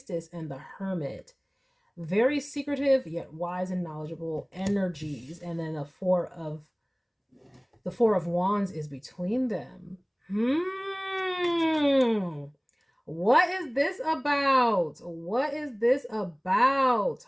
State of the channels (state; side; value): identical; both; correlation 1.00